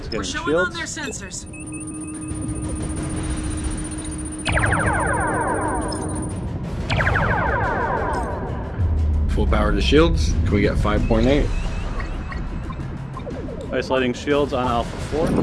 We're showing on their sensors. Full power to shields. Can we get 5.8? Isolating shields on Alpha 4.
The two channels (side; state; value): both; identical; correlation 1.00